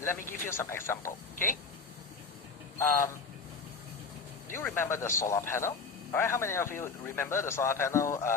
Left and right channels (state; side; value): quieter; right; 4.7 dB